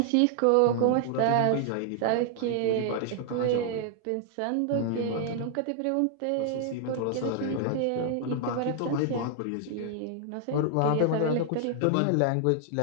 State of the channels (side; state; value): both; different; correlation 0.00